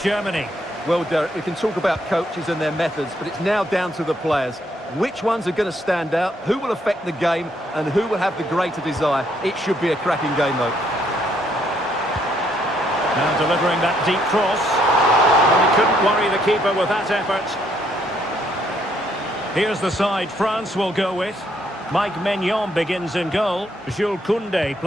Germany. Well, Derek, we can talk about coaches and their methods, but it's now down to the players. Which ones are going to stand out, who will affect the game, and who will have the greater desire? It should be a cracking game, though. Now delivering that deep cross. Well, he couldn't worry the keeper with that effort. Here's the side France will go with. Mike Maignan begins in goal. Jules Koundé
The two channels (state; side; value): normal; both; correlation 0.70